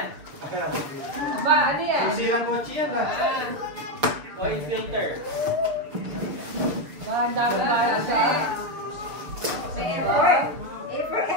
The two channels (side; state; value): left; late; 6.8 ms